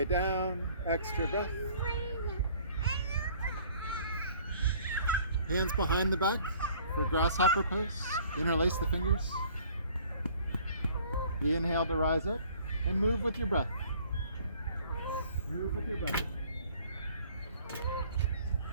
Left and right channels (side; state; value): both; inverted; correlation -0.55